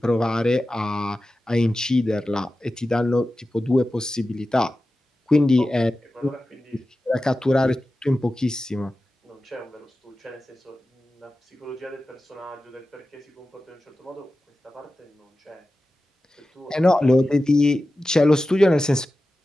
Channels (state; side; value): normal; both; correlation 0.94